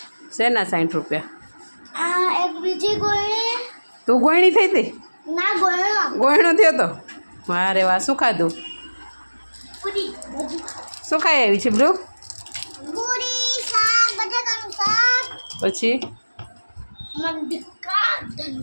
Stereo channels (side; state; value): both; inverted; correlation -1.00